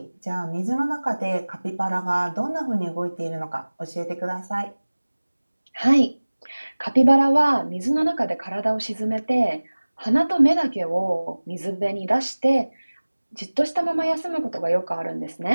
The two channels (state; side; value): inverted; both; correlation -1.00